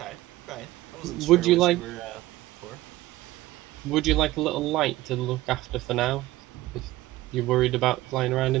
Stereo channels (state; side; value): quieter; left; 17.2 dB